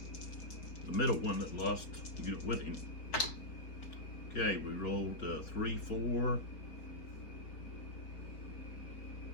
the middle one that lost unit with him. Okay, we rolled 3, 4,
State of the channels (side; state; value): right; late; 4.5 ms